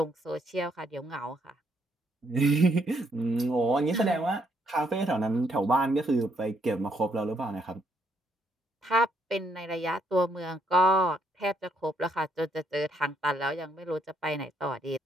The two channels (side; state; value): both; normal; correlation 0.73